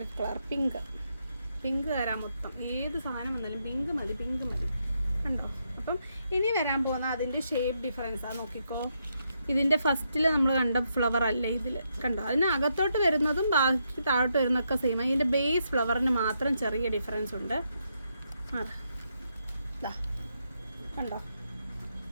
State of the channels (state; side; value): inverted; both; correlation -0.79